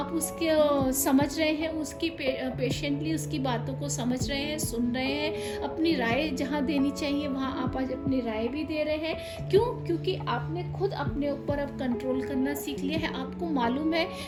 उसके समझ रहे हैं, उसकी पेशेंटली उसकी बातों को समझ रहे हैं, सुन रहे हैं, अपनी राय जहाँ देनी चाहिए वहाँ आप आज अपनी राय भी दे रहे हैं। क्यों? क्योंकि आपने खुद अपने ऊपर अब कंट्रोल करना सीख लिया है। आपको मालूम है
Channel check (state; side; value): identical; both; correlation 1.00